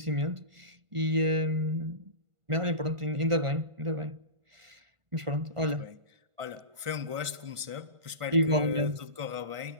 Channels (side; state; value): left; late; 1.5 ms